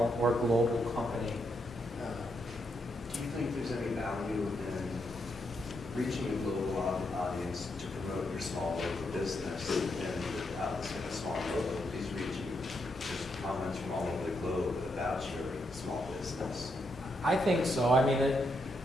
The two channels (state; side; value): normal; both; correlation 0.80